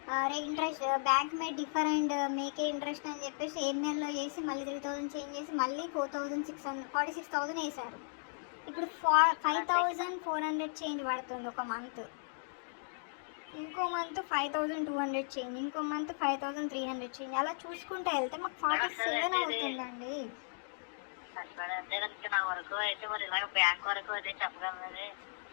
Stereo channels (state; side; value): silent; right; digital silence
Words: interest bank may different మేకే interest అని చెప్పేసి ఈమెయిల్లో చేసి మళ్ళీ 3,000 చేంజ్ చేసి మళ్ళీ 46,000 వేశారు. ఇప్పుడు 5,400 చేంజ్ పడుతుంది ఒక మంత్. ఇంకో మంత్ 5,200 చేంజ్, ఇంకో మంత్ 5,300 చేంజ్. అలా చూసుకుంటూ వెళ్తే మాకు 47 అవుతుందండి. నా వరకు అయితే మరి ఇలాగ బ్యాంక్ వరకు అయితే చెప్పగలరు.